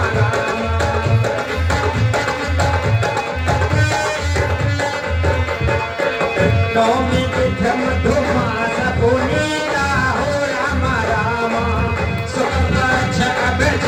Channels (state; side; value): identical; both; correlation 1.00